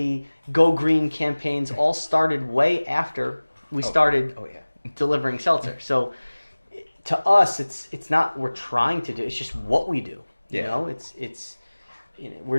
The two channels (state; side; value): inverted; both; correlation -1.00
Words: Go Green campaigns all started way after we started delivering seltzer. So to us, it's not we're trying to do. It's just what we do. It's we're